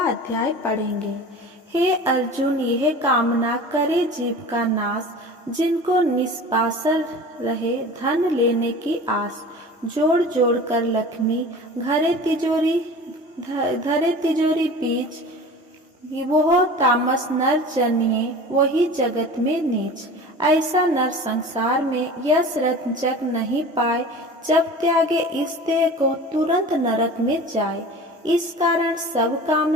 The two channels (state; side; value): normal; both; correlation 0.38